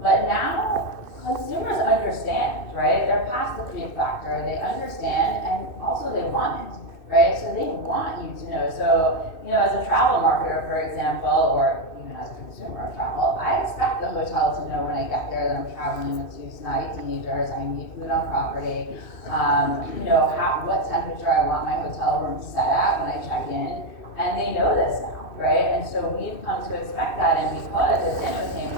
But now, consumers understand, right? They're past the creep factor. They understand, and also they want it, right? So they want you to know. So, as a travel marketer, for example, or even as a consumer of travel, I expect the hotel to know when I get there that I'm traveling with two snotty teenagers. I need food on property. What temperature I want my hotel room set at when I check in, and they know this now, right? And so we've come to expect that, and because, as Dan was saying,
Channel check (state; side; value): late; right; 2.6 ms